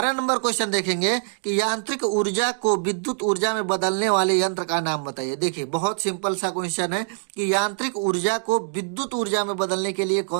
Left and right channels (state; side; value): silent; left; digital silence